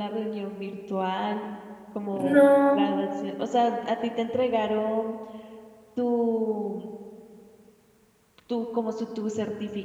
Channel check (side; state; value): both; identical; correlation 1.00